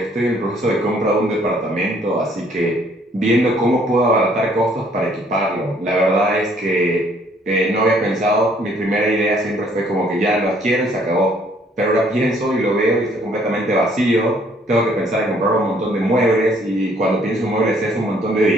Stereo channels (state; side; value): normal; both; correlation 0.63